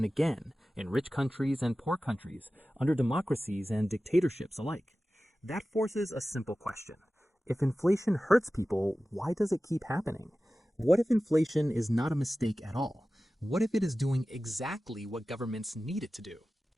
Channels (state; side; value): normal; both; correlation 0.95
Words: again, in rich countries and poor countries, under democracies and dictatorships alike. That forces a simple question. If inflation hurts people, why does it keep happening? What if inflation is not a mistake at all? What if it is doing exactly what governments need it to do?